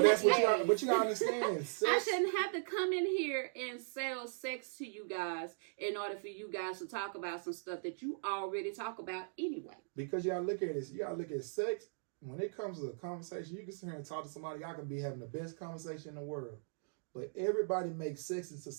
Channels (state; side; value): silent; left; digital silence